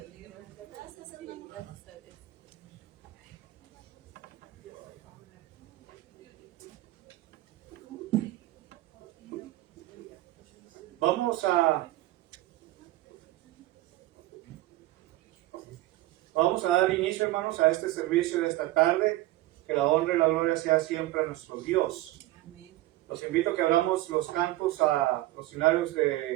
Vamos a dar inicio, hermanos, a este servicio de esta tarde. Que la honra y la gloria sea siempre a nuestro Dios. Los invito a que abramos los cantos a los finales de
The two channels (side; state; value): left; quieter; 17.1 dB